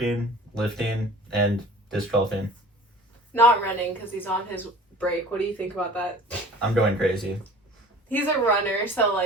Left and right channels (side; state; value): both; normal; correlation 0.44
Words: lifting, and disc golfing. Not running because he's on his break. What do you think about that? I'm going crazy. He's a runner, so